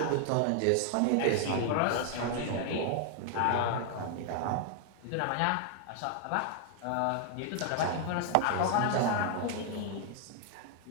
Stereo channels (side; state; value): both; different; correlation 0.00